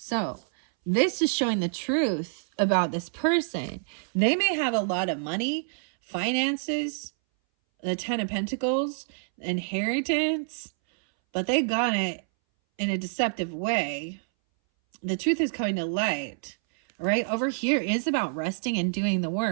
this is showing the truth about this person. They may have a lot of money, finances, the Ten of Pentacles, inheritance, but they got it in a deceptive way. The truth is coming to light. Right over here is about resting and doing the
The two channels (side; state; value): left; silent; 60 dB below the other